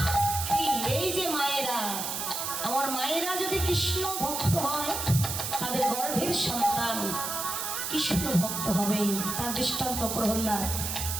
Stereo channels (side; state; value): right; noise; hiss, 3 dB below the sound